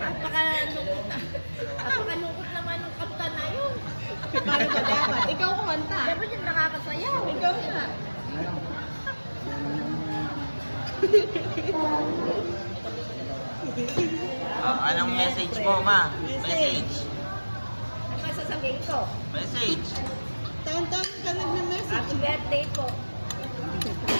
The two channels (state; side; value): inverted; both; correlation -1.00